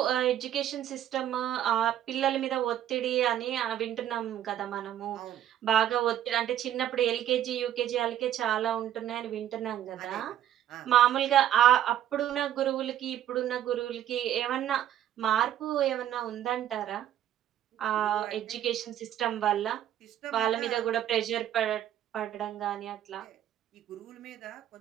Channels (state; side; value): quieter; left; 11.4 dB